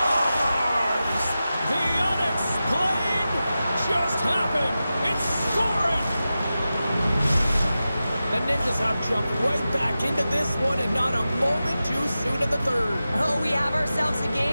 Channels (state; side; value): inverted; both; correlation -0.93